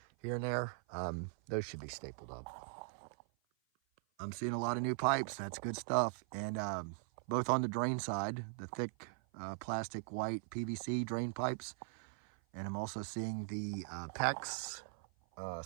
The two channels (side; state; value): left; silent; 51 dB below the other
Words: here and there. Those should be stapled up. I'm seeing a lot of new pipes. That's good stuff. And both on the drain side, the thick plastic white PVC drain pipes, and I'm also seeing the PEX